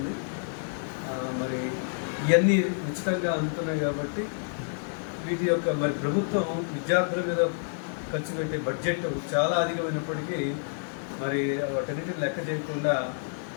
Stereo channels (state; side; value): silent; right; digital silence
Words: మరి ఇవన్నీ ఉచితంగా అందుతున్నాయి కాబట్టి వీటి యొక్క మరి ప్రభుత్వం విద్యార్థుల మీద ఖర్చు పెట్టే బడ్జెట్ చాలా అధికమైనప్పటికీ మరి వాటన్నిటిని లెక్క చేయకుండా